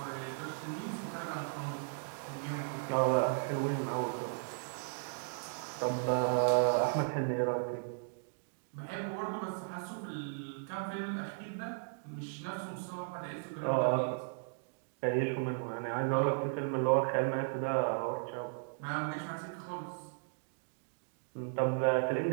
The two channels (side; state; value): left; silent; digital silence